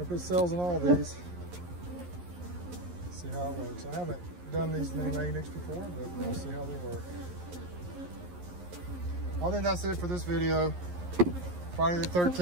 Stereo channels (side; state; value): left; late; 11 ms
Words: put cells in all these. See how it works. I haven't done these mini mating nukes before, but we'll see how they work. I think that's it for this video. Friday the